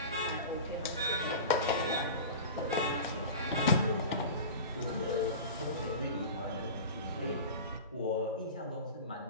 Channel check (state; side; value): inverted; both; correlation -0.32